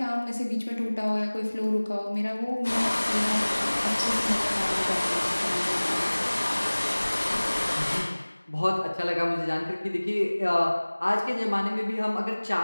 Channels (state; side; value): inverted; both; correlation -1.00